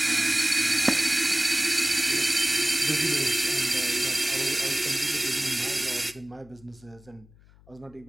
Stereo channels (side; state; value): left; noise; hum, 26 dB below the sound